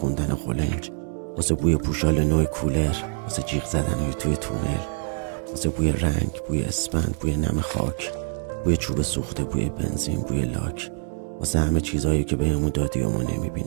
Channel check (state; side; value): silent; left; 62 dB below the other